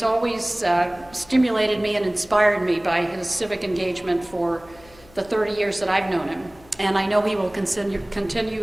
always stimulated me and inspired me by his civic engagement for the 30 years that I've known him. And I know he will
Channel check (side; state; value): left; noise; hum, 25 dB below the sound